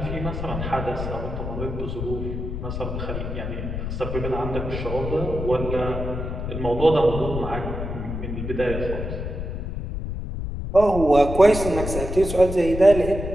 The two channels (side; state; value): left; noise; rumble, 5 dB below the sound